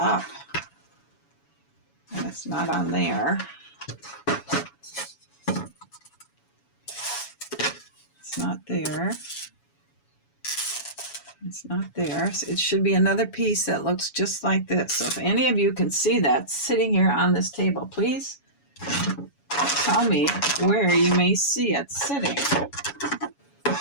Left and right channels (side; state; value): right; late; 7.1 ms